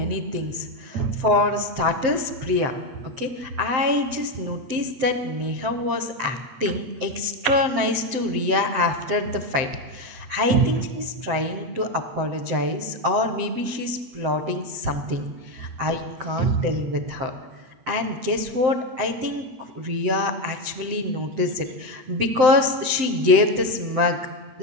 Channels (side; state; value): left; late; 7.7 ms